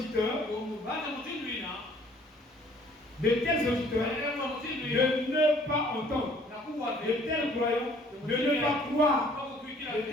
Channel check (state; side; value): normal; both; correlation 0.57